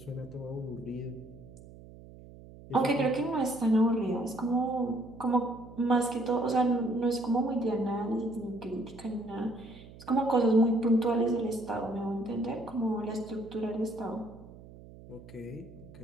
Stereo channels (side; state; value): right; noise; hum, 18 dB below the sound